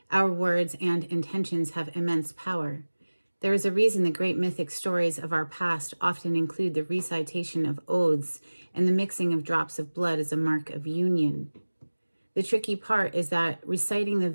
Our words and intentions have immense power. There is a reason the great mythic stories of our past often include the recitation of oaths and the mixing of drops of blood as a mark of union. The tricky part is that reciting the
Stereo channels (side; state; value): both; inverted; correlation -1.00